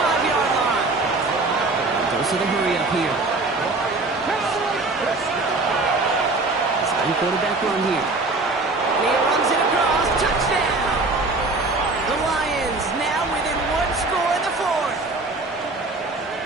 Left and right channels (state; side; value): quieter; left; 3.3 dB